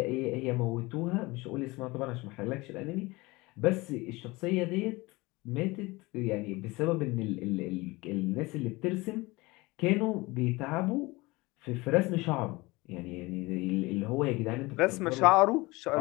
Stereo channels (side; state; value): right; quieter; 22.6 dB